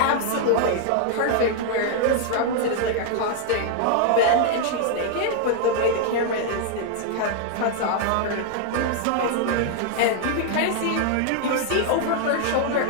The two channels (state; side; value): different; both; correlation -0.01